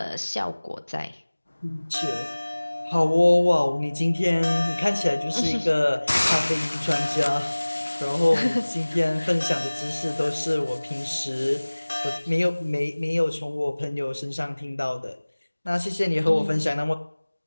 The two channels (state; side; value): inverted; both; correlation -1.00